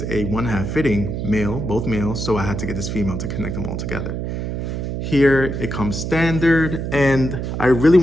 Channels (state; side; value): noise; right; hum, 4 dB below the sound